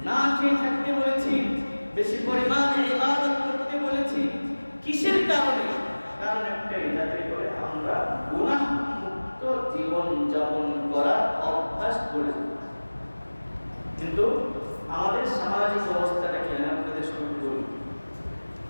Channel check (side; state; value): both; inverted; correlation -1.00